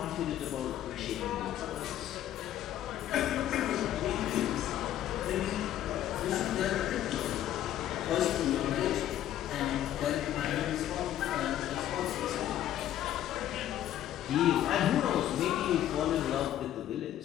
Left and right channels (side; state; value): right; quieter; 12.0 dB